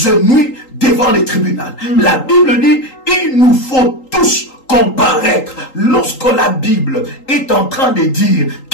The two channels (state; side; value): late; right; 3.8 ms